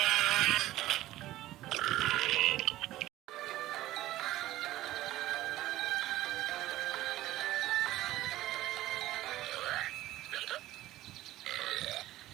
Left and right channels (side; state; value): left; quieter; 15.5 dB